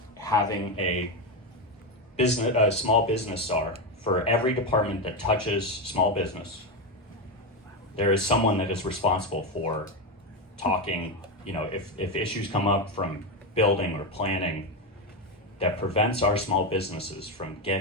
having a small business czar for every department that touches small business. There is someone that is responsible for talking, if issues come up from building or planning that prevents our small businesses from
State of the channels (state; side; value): normal; both; correlation 0.12